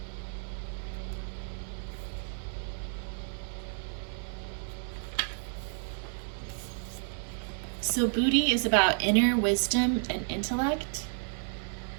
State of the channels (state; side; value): silent; left; 57 dB below the other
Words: So Booty is about inner wisdom and intellect.